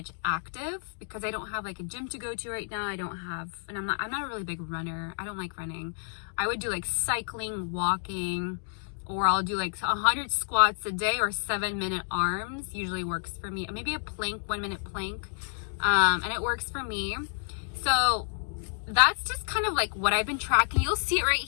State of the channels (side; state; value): right; silent; digital silence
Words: active because I don't have like a gym to go to right now. I don't have, and I'm not a really big runner. I don't like running. I would do like cycling, walking, or I'll do like 100 squats a day or 7-minute arms. Usually works for me. Maybe a plank, 1-minute plank. And it works for me. So that's just kind of like what I've been tracking. You'll see it right